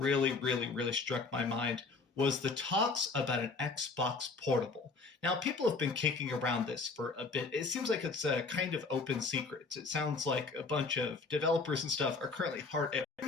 really, really struck my mind was the talks about an Xbox Portable. Now, people have been kicking around this for a bit. It seems like it's a kind of open secret. It sounds like a bunch of developers and stuff are currently hard at a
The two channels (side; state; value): right; quieter; 4.2 dB